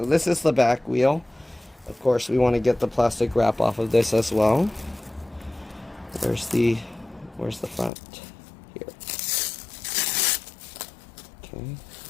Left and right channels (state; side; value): drops out; right; at 7.9 s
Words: this is the back wheel. Of course, we want to get the plastic wrap off of this as well. Where's the front? Here. Okay.